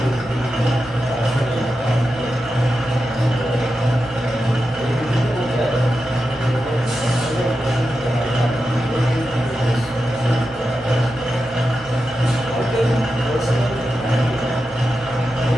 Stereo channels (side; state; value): both; normal; correlation 0.90